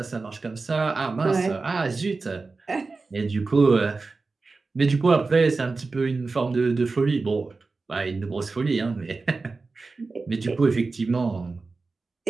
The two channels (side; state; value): left; quieter; 3.9 dB